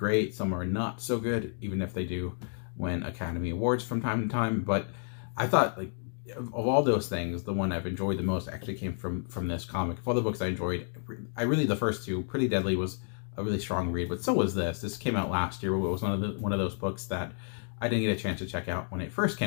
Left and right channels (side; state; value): right; silent; 57 dB below the other